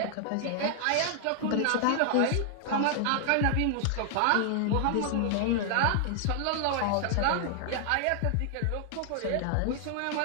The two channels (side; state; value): both; different; correlation 0.00